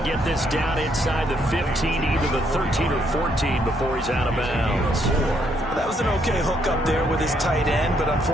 get this down inside the 15, either the 13 or 14 before he's out of bounds. That was an okay hook up there with his tight end, but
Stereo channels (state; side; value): normal; both; correlation 0.72